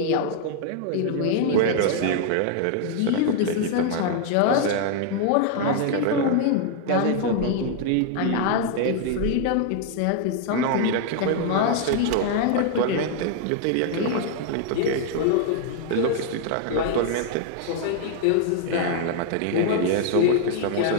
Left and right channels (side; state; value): both; different; correlation 0.00